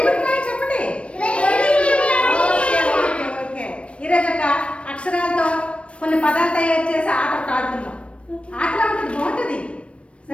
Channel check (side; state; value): right; late; 0.060 ms